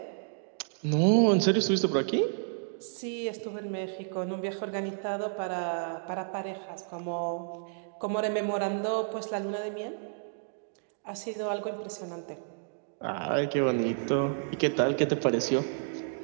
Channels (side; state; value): left; silent; digital silence